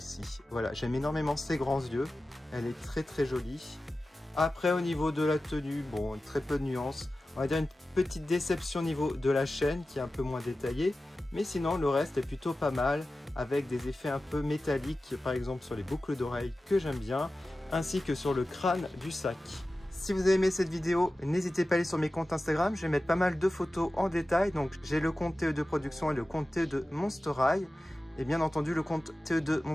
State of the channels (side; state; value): both; normal; correlation 0.95